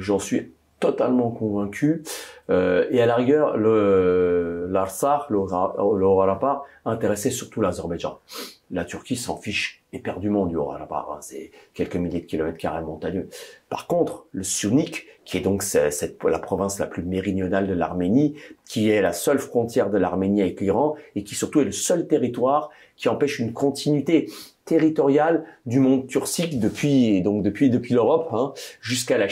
suis totalement convaincu. Et à la rigueur, l'Artsakh, le Haut-Karabakh, intéressait surtout l'Azerbaïdjan. La Turquie s'en fiche éperdument du Haut-Karabakh, hein, c'est quelques milliers de kilomètres carrés montagneux. Par contre, le Syunik, qui est donc la province la plus méridionale de l'Arménie, qui est la seule frontière de l'Arménie avec l'Iran, et qui surtout est le seul territoire qui empêche une continuité territoriale du monde turcique depuis l'Europe, hein, jusqu'à la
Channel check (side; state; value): both; identical; correlation 1.00